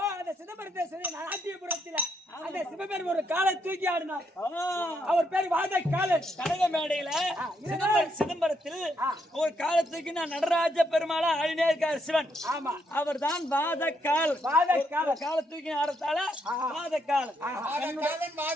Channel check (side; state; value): both; normal; correlation 0.76